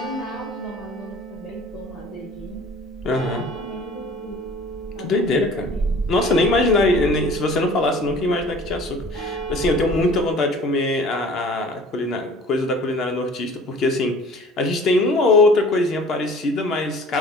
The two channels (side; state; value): both; normal; correlation 0.47